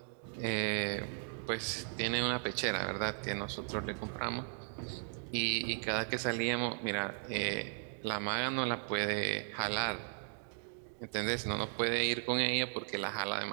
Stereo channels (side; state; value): left; silent; 53 dB below the other